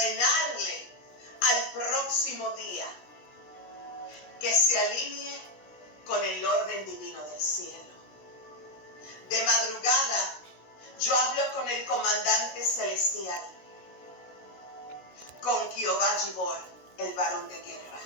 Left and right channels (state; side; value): late; right; 16 ms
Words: al próximo día que se alinee con el orden divino del cielo. De madrugada yo hablo con el comandante celestial, con Jehová Gibor, el varón de guerra.